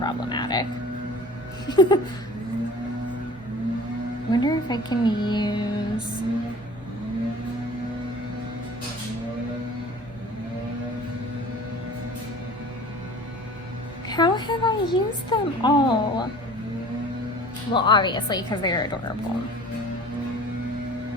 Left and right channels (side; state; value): both; normal; correlation 0.44